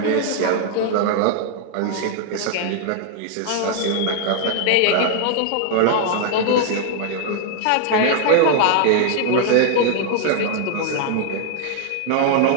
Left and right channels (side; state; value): both; different; correlation 0.00